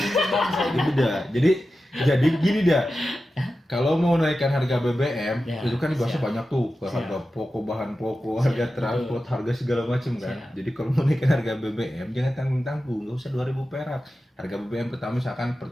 bangsa ini. Jadi gini dah. kalau mau naikkan harga BBM, Ya, itu kan dibahasnya siap. banyak tuh, ke Siap. harga pokok, bahan pokok, Siap, harga transport, harga segala macam kan. Siap. Jadi kalau mau naikkan harga BBM, jangan tanggung-tanggung, nggak usah 2.000 perak. Harga BBM pertama misalkan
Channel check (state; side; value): normal; both; correlation 0.93